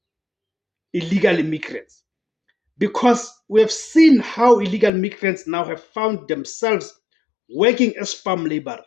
illegal immigrants. Because we have seen how illegal migrants now have found themselves working as farm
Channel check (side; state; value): right; drops out; at 4.9 s